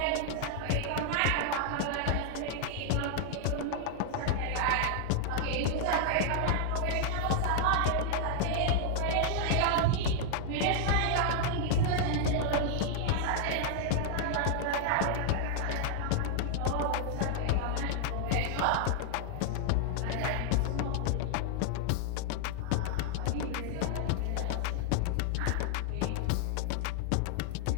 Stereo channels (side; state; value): both; different; correlation 0.00